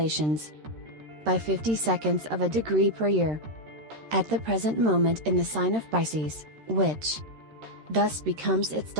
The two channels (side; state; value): left; late; 13 ms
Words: by 50 seconds of a degree per year. At the present moment in the sign of Pisces, which thus becomes its